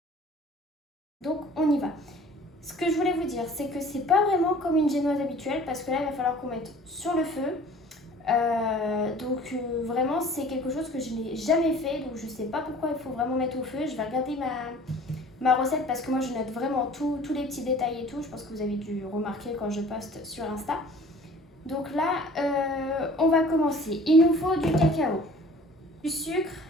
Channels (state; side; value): normal; both; correlation 0.48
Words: Donc on y va. Ce que je voulais vous dire, c'est que c'est pas vraiment comme une génoise habituelle parce que là il va falloir qu'on mette sur le feu. Vraiment c'est quelque chose que je n'ai jamais fait, donc je sais pas pourquoi il faut vraiment mettre au feu. Je vais regarder ma recette parce que moi je note vraiment tous les petits détails et tout. Je pense que vous avez dû remarquer quand je poste sur Insta. Donc là on va commencer. Il nous faut du cacao, du sucre,